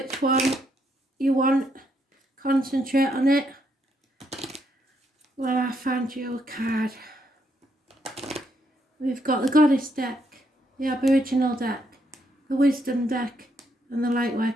one you want, concentrate on it. Well, I found you a card. We've got the Goddess deck, the Aboriginal deck, the Wisdom deck, and the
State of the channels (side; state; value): both; normal; correlation 0.75